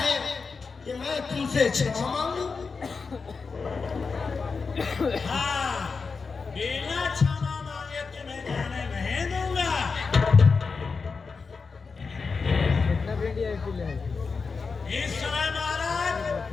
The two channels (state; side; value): quieter; right; 4.8 dB